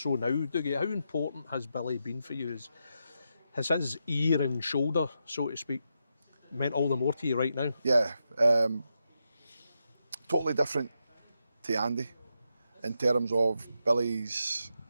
now, Dougie, how important has Billy been for you? Has his ear and shoulder, so to speak, meant all the more to you right now? Yeah, totally different to Andy in terms of Billy's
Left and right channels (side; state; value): both; inverted; correlation -0.85